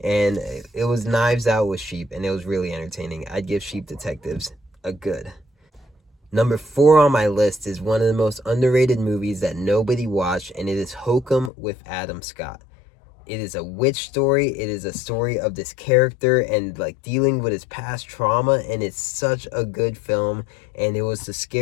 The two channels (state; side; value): drops out; right; at 11.5 s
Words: it was Knives Out with sheep and it was really entertaining. I'd give Sheep Detectives a good. Number 4 on my list is one of the most underrated movies that nobody watched, and it is Hokum with Adam Scott. It is a witch story. It is a story of this character and like dealing with his past trauma, and it's such a good film. And it was the